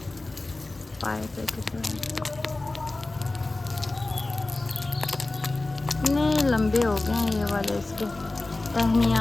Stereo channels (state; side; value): quieter; right; 3.0 dB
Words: पाइप इतने लंबे हो गए हैं ये वाले इसके